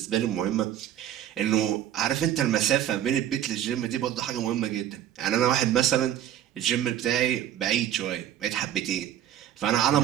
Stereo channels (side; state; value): left; quieter; 11.1 dB